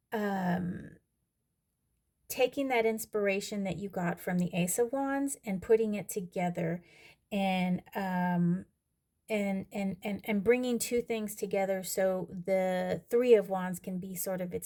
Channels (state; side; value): identical; both; correlation 1.00